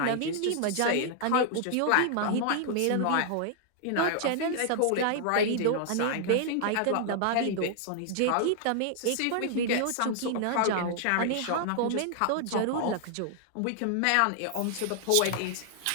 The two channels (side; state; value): both; different; correlation 0.00